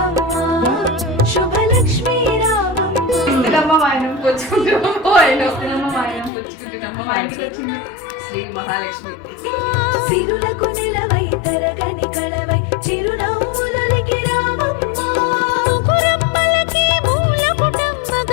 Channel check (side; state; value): right; drops out; at 6.3 s